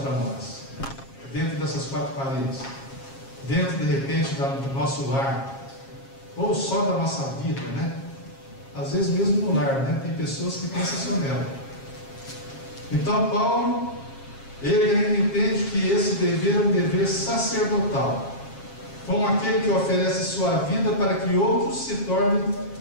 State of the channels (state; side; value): late; right; 7.4 ms